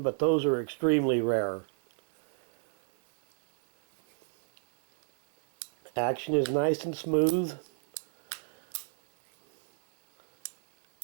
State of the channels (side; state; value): left; silent; 58 dB below the other